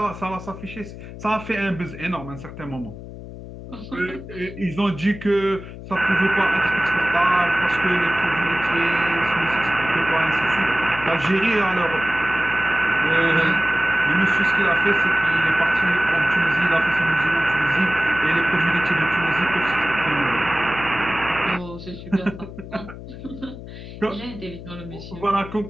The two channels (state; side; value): noise; left; hum, 13 dB below the sound